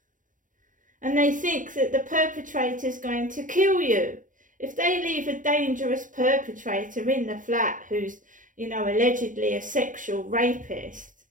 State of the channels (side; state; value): left; late; 0.38 ms